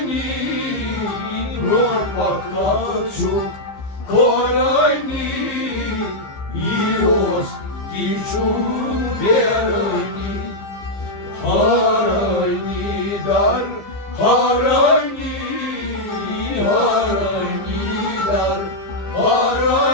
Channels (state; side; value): late; right; 15 ms